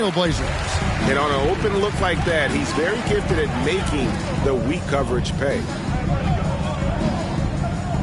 And on an open look like that, he's very gifted at making the weak coverage pay.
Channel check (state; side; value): identical; both; correlation 1.00